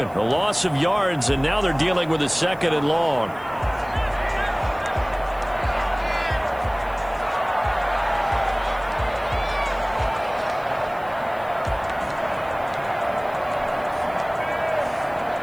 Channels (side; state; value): right; noise; hiss, 27 dB below the sound